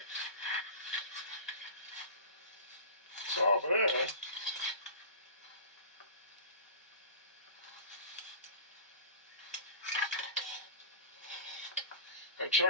It's all there. I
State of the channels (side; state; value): both; inverted; correlation -0.34